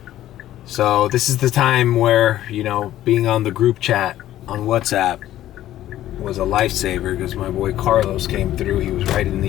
So this is the time where, you know, being on the group chat on WhatsApp was a lifesaver, because my boy Carlos came through. He was right in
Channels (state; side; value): quieter; right; 13.3 dB